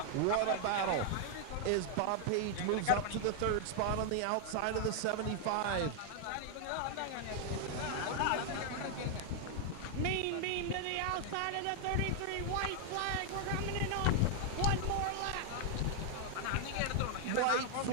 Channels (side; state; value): both; different; correlation 0.00